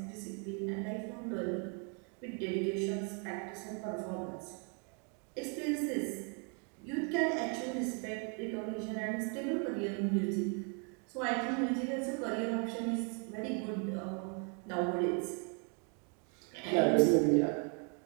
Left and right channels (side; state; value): left; quieter; 39.1 dB